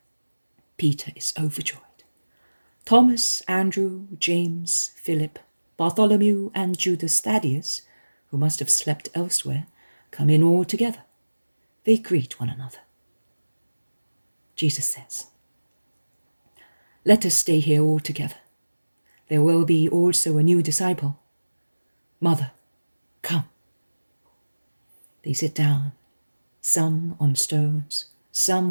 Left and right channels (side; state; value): both; inverted; correlation -1.00